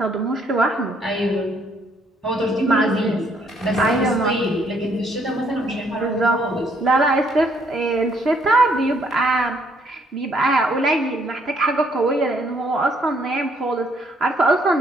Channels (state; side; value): normal; both; correlation 0.68